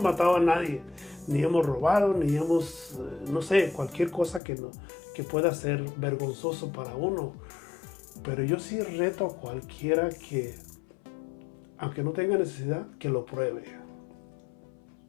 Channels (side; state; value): right; drops out; at 4.4 s